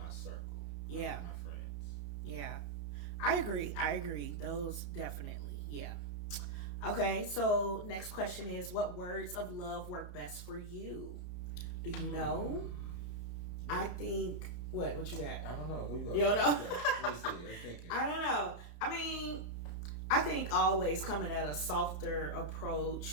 circle. Yeah. My friends. Yeah. I agree. Those definitely. Yeah. Okay, so next question is, what words of love work best for you? Do you know? I think, what you got? I don't know. Who you got? You don't know? Let me see. I'm thinking. I don't know. I mean, I think always coming at a softer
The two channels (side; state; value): right; late; 34 ms